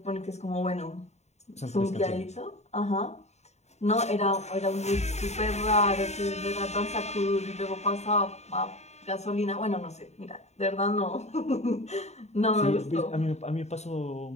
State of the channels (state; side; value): late; right; 0.32 ms